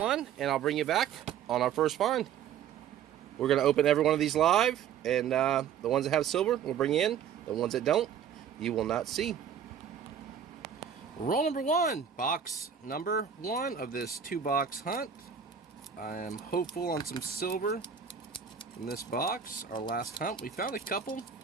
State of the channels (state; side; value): quieter; left; 8.1 dB